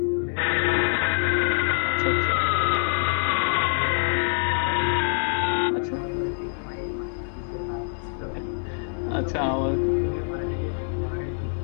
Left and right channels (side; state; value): right; silent; digital silence